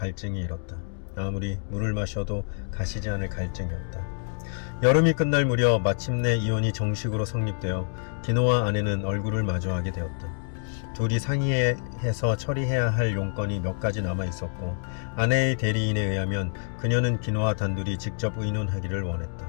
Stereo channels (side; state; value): right; silent; digital silence